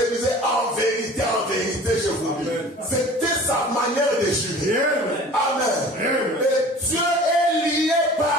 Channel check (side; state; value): both; normal; correlation 0.43